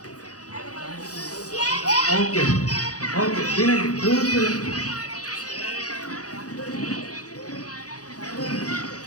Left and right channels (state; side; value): late; right; 0.67 ms